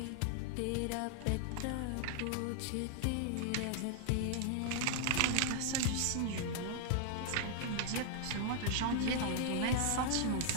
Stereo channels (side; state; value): both; different; correlation 0.00